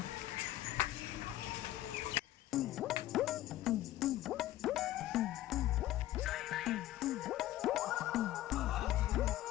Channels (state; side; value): quieter; right; 14.5 dB